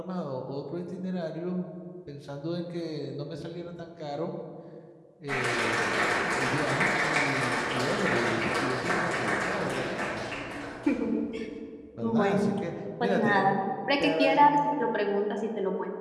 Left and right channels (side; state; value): both; identical; correlation 1.00